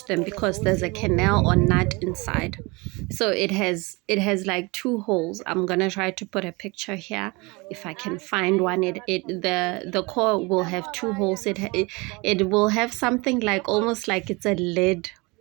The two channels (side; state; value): left; quieter; 26.1 dB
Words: them, because there's a canal or nut inside. So it has like two holes. I'm gonna try to put a picture here if I can find one. The core will have two holes. It will have something like almost like it's a lid